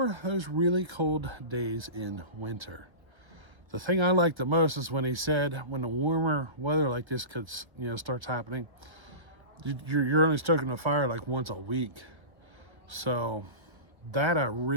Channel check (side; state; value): left; late; 1.0 ms